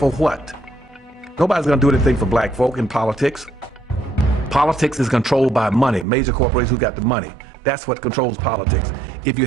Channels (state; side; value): drops out; left; at 6.1 s